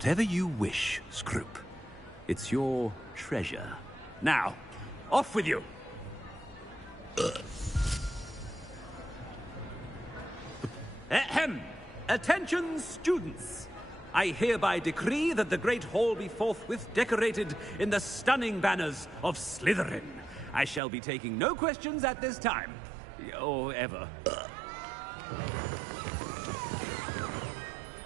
you wish, Scrope. It's your treasure. Now, off with you. Ahem! Attention, students! I hereby decree that the Great Hall be forthwith decorated in the stunning banners of Slytherin. I shall be taking no questions at this time. Or ever.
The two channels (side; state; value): left; drops out; at 20.8 s